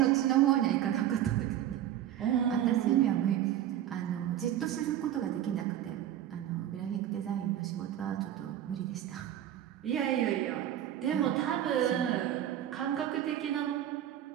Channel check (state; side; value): quieter; left; 11.5 dB